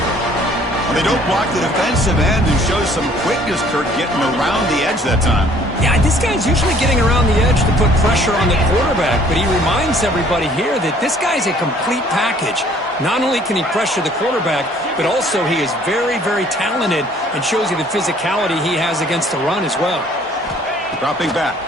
They don't block the defensive end and show some quickness, Kirk, getting around the edge that time. Yeah, this guy's usually getting around the edge to put pressure on the quarterback, but he reminds everybody here that this guy's a complete package. Not only can he pressure the quarterback, but also he is very, very talented and shows you the physicality he has against the run as well. Dropping back,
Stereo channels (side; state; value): both; normal; correlation 0.57